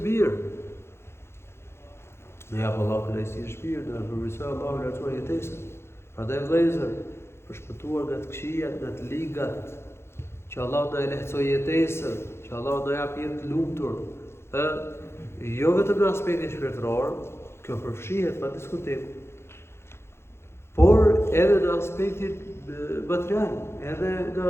mirë. Ne jap Allahu kënaqësi në shpirt, dhe përmirësoj Allahu lartuar jetesën. Prandaj vëllezër, për shpëtuar nga të këqijat, nga të ligat, që Allahu na e lehtësoj jetesën, që Allahu na jap jetë të lumtur, jo vetëm në aspektin shpirtëror, kjo përfshihet pa diskutim, por edhe në aspektin material, edhe nga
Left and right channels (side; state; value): right; late; 0.12 ms